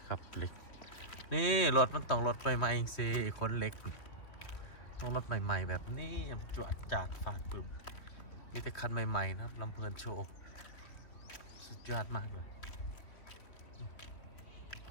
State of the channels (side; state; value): right; late; 2.8 ms